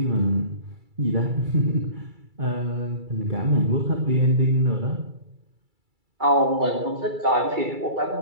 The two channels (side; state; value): left; late; 2.3 ms